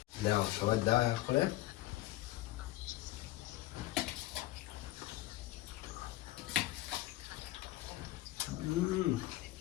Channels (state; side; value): quieter; right; 16.9 dB